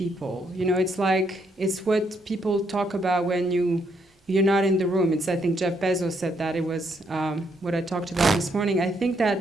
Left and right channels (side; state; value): both; normal; correlation 0.74